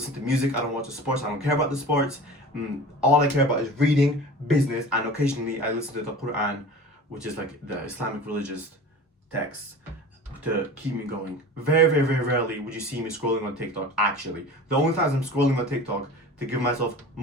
to music, I don't watch the sports, I don't care about the sports. All I care about is reading, business, and occasionally I listen to the Quran, which is like the Islamic religious texts, to keep me going. Very, very, very rarely would you see me scrolling on TikTok, actually. The only times I'm scrolling on TikTok to give myself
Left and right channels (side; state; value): both; normal; correlation 0.37